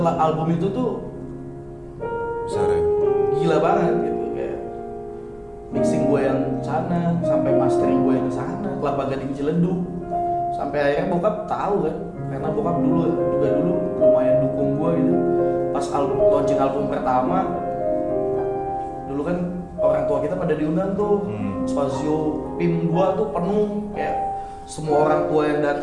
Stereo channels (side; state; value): both; identical; correlation 1.00